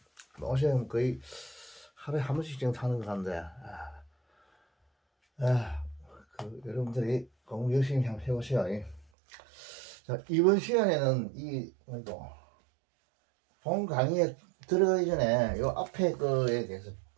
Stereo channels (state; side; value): drops out; left; at 9.1 s